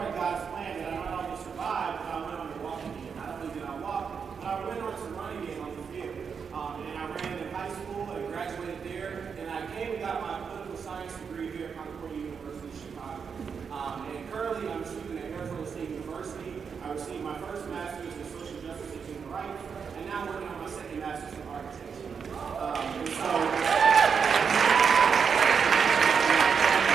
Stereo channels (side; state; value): left; quieter; 6.3 dB